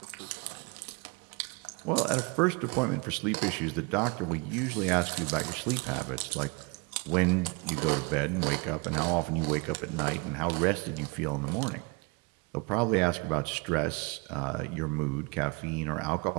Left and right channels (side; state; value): left; quieter; 30.0 dB